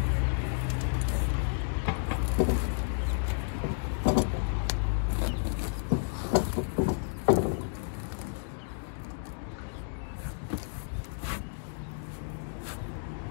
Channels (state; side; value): silent; right; digital silence